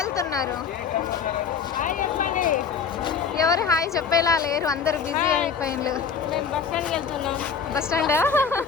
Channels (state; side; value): quieter; right; 6.4 dB